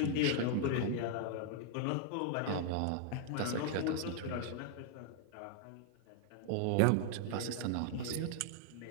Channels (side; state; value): both; different; correlation 0.00